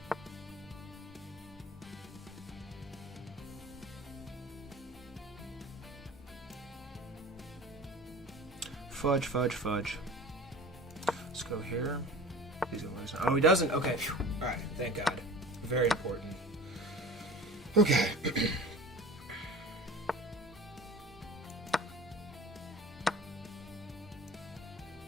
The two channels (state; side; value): normal; both; correlation 0.40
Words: Fudge, fudge, fudge. Let's go here. He's gonna lose. Oh, he doesn't? Okay. Alright, thank God. Very important. Okay.